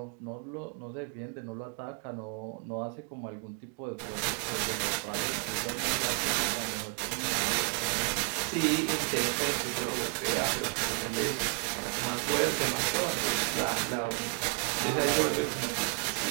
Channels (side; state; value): left; quieter; 33.4 dB